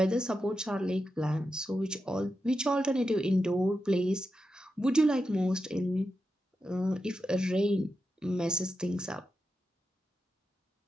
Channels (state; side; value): normal; both; correlation 0.88